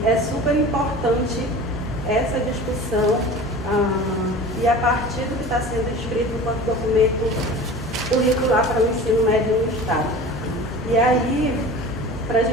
é super importante essa discussão e a partir do que está sendo escrito enquanto documento curricular para o ensino médio no Estado. E aí, para a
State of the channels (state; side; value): normal; both; correlation 0.38